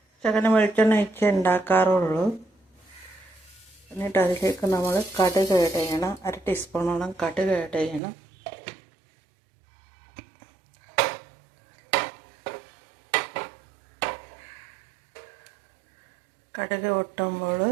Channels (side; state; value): left; drops out; at 8.0 s